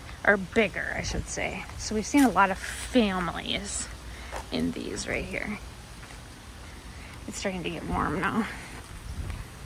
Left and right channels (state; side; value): identical; both; correlation 1.00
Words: or bigger, I should say. So we've seen a lot of families in these right here. It's starting to get warm now.